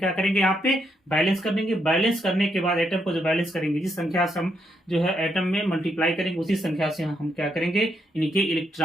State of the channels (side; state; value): both; normal; correlation 0.78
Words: करेंगे, यहाँ पे बैलेंस कर देंगे। बैलेंस करने के बाद एटम को जो बैलेंस करेंगे, जिस संख्या से हम जो है एटम में मल्टीप्लाई करेंगे, उसी संख्या से हम क्या करेंगे, इनके